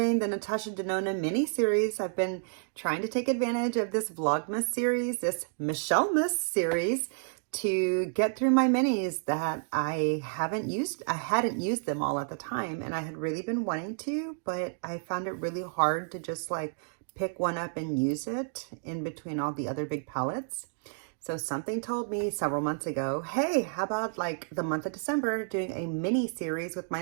the Natasha Denona mini-series. I've been trying to take advantage of this Vlogmas series, this Michellemas series, to get through my minis that I hadn't used them all at the time, and I had really been wanting to, but I found it really hard to just like pick one up and use it in between all the other big palettes. So something told me several months ago, hey, how about like the month of December doing a mini series with my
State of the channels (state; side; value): silent; left; digital silence